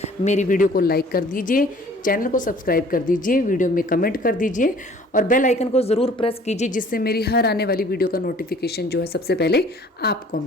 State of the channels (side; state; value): both; normal; correlation 0.52